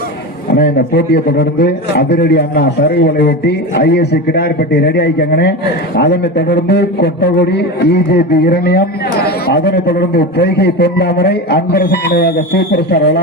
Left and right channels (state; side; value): normal; both; correlation 0.23